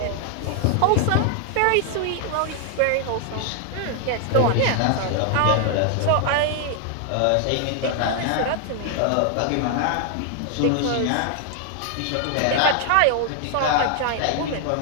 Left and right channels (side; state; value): both; different; correlation 0.00